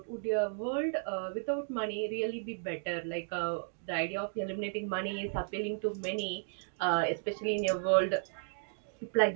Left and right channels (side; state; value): left; silent; digital silence